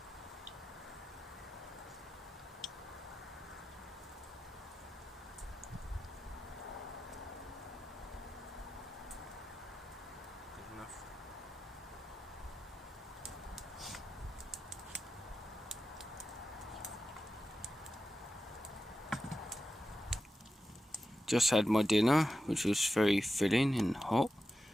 Just had my dinner, which was very filling and hot.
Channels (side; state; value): both; normal; correlation 0.91